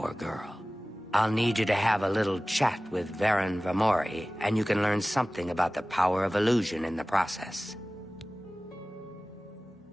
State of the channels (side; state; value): both; normal; correlation 0.97